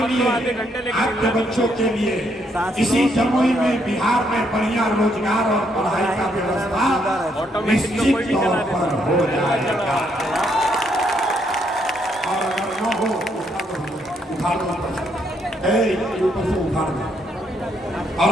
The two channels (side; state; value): both; normal; correlation 0.73